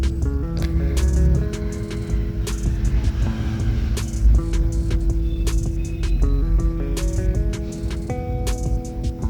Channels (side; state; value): both; identical; correlation 1.00